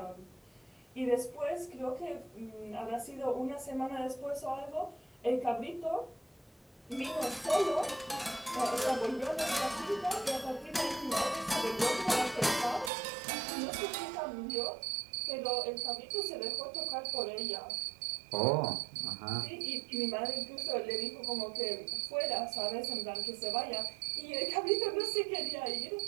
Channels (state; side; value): drops out; left; at 12.9 s